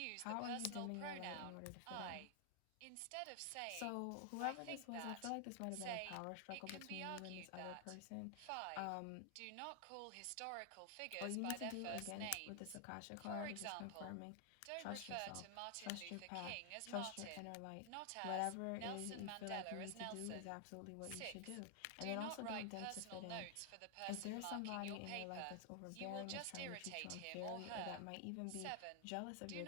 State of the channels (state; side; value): different; both; correlation 0.00